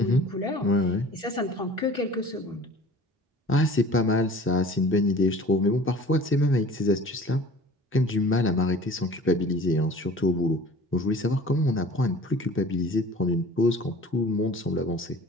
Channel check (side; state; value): both; normal; correlation 0.44